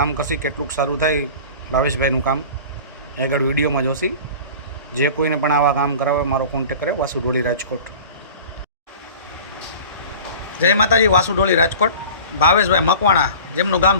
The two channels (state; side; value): inverted; both; correlation -0.40